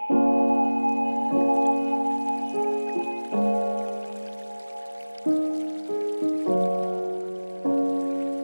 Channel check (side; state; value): both; inverted; correlation -1.00